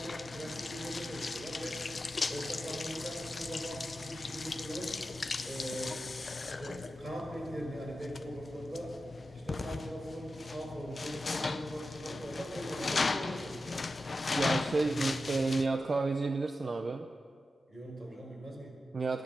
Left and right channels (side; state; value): both; normal; correlation 0.91